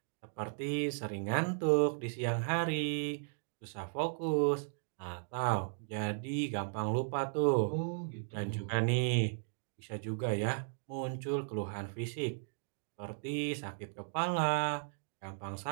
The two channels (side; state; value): left; silent; digital silence